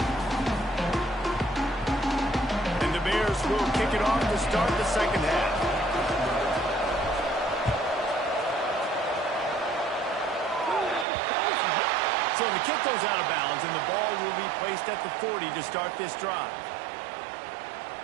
And the Bears will kick it off to start the second half. So the kick goes out of bounds, and the ball will be placed at the 40 to start this drive.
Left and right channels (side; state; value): left; drops out; at 11.1 s